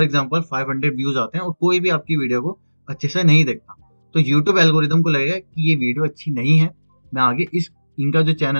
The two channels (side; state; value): both; inverted; correlation -1.00